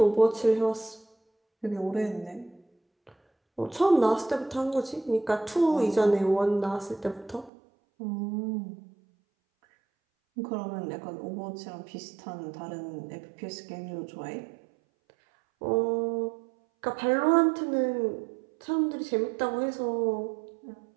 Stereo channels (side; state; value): left; drops out; at 7.5 s